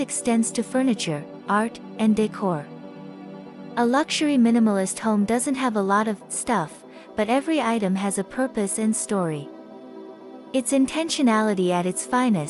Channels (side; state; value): both; identical; correlation 1.00